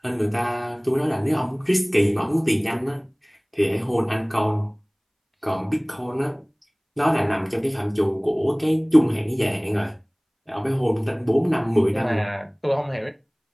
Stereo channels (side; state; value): both; identical; correlation 1.00